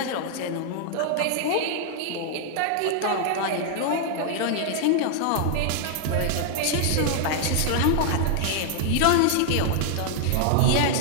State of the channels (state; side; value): different; both; correlation 0.00